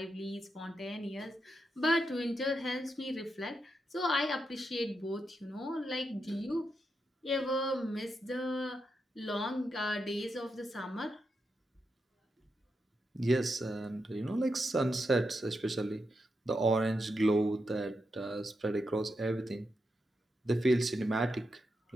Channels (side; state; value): both; normal; correlation 0.85